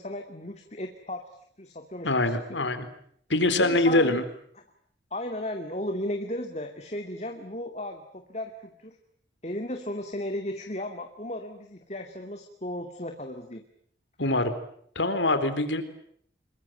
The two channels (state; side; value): normal; both; correlation 0.09